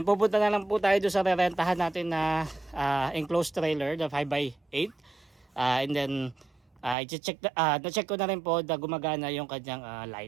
pupunta na lang po tayo doon sa rerentahan natin na enclosed trailer, the 5x8. And then na-check ko na rin po na gumagana yung kanyang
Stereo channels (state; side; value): drops out; left; at 7.0 s